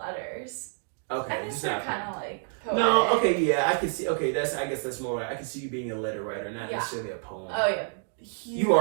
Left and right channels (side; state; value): left; silent; digital silence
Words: Okay, I guess they're kind of like poetic. No, okay, yeah, I can see. Okay, I guess that's more. I can see you being a letter writer, not necessarily a poem. Oh yeah, you